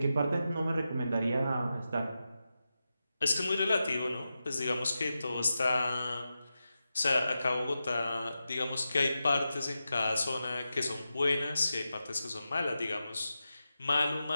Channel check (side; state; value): both; inverted; correlation -0.91